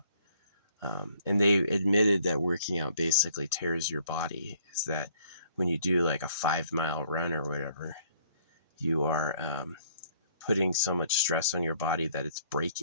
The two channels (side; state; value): both; inverted; correlation -0.62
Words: And they admitted that working out basically tears your body. Is that when you do like a 5-mile run or whatever, you are putting so much stress on your body that it's